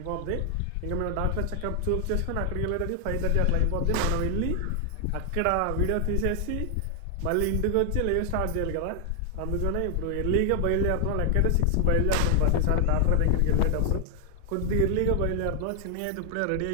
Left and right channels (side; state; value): both; different; correlation 0.00